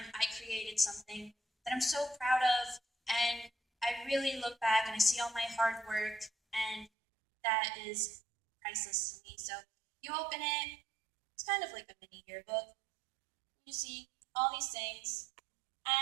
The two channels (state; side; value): drops out; left; at 6.9 s